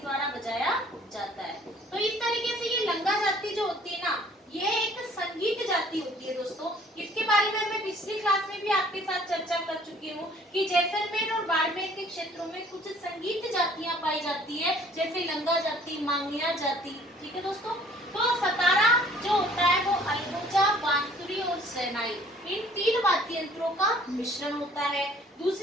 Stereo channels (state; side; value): normal; both; correlation 0.56